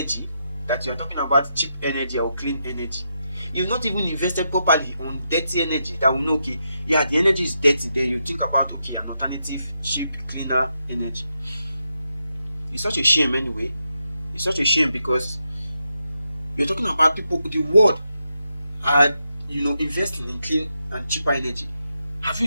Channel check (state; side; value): inverted; both; correlation -0.84